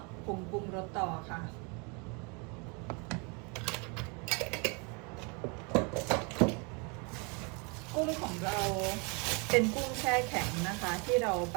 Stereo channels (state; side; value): quieter; left; 32.5 dB